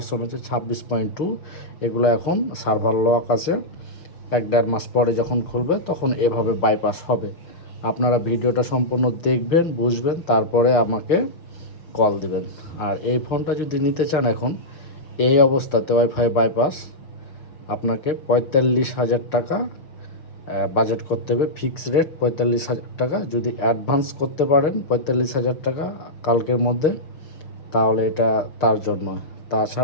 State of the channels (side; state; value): right; late; 6.3 ms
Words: হচ্ছে 26.2, এগুলো এখন সার্ভার লক আছে। 1-1.5 মাস পরে যখন খুলবে তখন এভাবে বাইপাস হবে। আপনারা ভিডিওটা সম্পূর্ণ দেখবেন, বুঝবেন, তারপরে আমাকে কল দিবেন। আর এই ফোনটা যদি নিতে চান এখন এই অবস্থাতে ওয়াইফাই বাইপাস, আপনাকে 45,000 টাকা বাজেট করতে হবে। ফিক্স রেট 45,000 টাকা। যদি অ্যাডভান্স করতে পারেন 45,000 টাকা কালকের মধ্যে, তাহলে এটা তার জন্য।